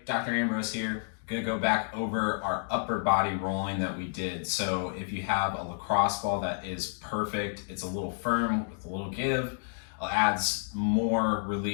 Dr. Ambrose here. Gonna go back over our upper body rolling that we did. So if you have a lacrosse ball that is perfect, it's a little firm with a little give, adds more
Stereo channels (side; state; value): right; silent; digital silence